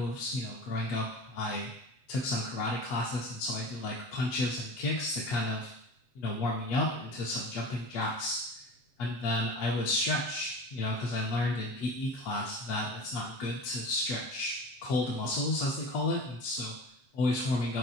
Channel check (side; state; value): right; late; 7.7 ms